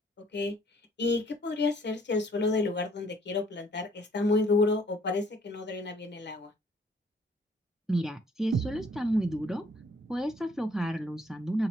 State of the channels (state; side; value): normal; both; correlation 0.62